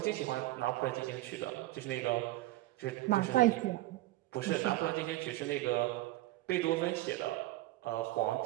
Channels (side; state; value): left; quieter; 17.2 dB